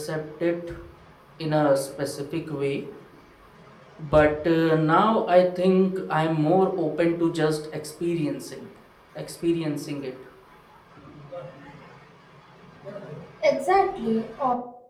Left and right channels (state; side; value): identical; both; correlation 1.00